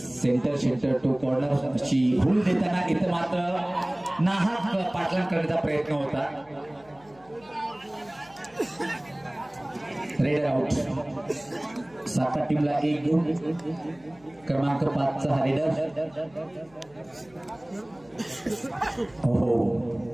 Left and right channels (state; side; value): noise; left; hum, 28 dB below the sound